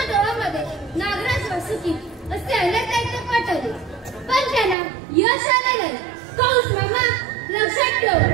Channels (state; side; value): drops out; left; at 4.8 s